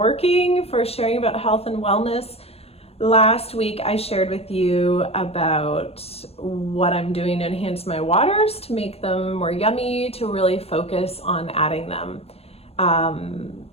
for sharing about health and wellness. Last week I shared with you about what I'm doing to enhance my waters, to make them more yummy, to really focus on adding them. Adding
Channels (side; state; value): right; late; 0.29 ms